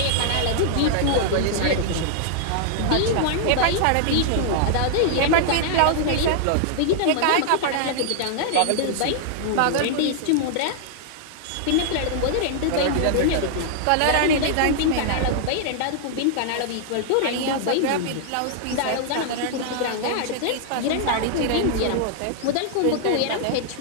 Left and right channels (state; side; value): different; both; correlation -0.01